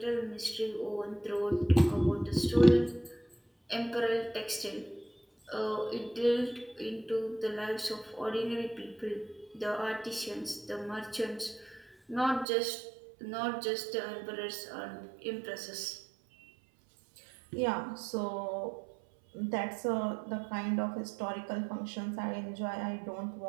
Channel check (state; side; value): drops out; left; at 12.5 s